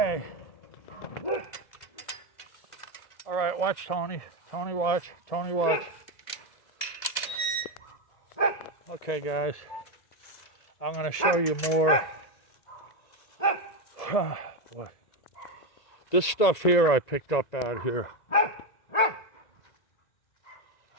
All right, watch Tony. Tony, watch. Okay, guys. I'm going to show you more. Oh, boy. This stuff here I picked up out here.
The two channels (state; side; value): late; right; 2.0 ms